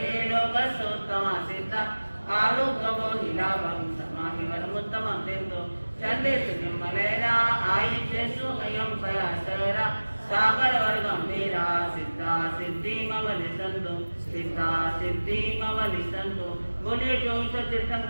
लोकसौत्तमा सिद्धा आरूपो हिरावं समानिवरमुत्तमं दिन्तु चन्देषु निम्मलैरा आयुषेषु अयं पयासैरा सागरवर्गम्भीरा सिद्धा सिद्धि मम दिसन्तु सिद्धा सिद्धि मम दिसन्तु। बोलिए 24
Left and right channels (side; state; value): both; inverted; correlation -1.00